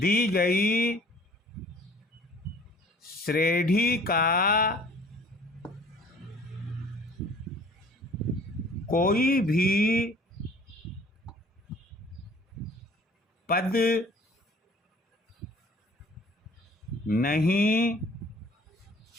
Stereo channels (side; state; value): both; normal; correlation 0.52